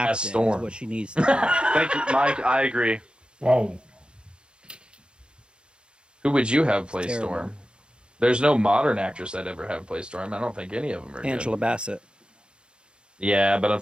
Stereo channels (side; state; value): left; late; 0.053 ms